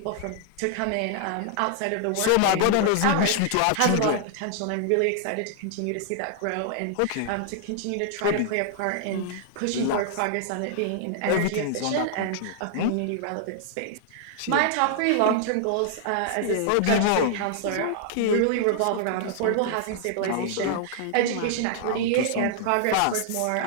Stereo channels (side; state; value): both; different; correlation -0.01